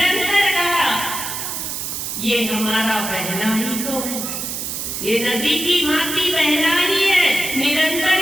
कहा ये हमारा बहना ही तो है, ये नदी की भांति बहना ही है। निरंतर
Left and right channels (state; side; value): noise; right; hiss, 4 dB below the sound